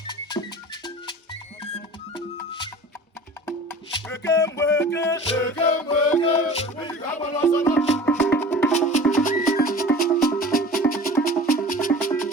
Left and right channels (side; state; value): both; normal; correlation 0.41